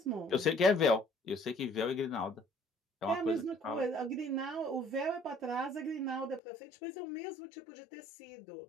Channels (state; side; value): drops out; right; at 6.4 s